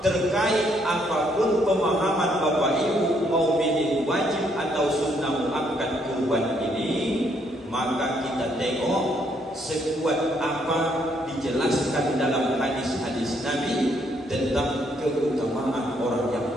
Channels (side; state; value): both; normal; correlation 0.71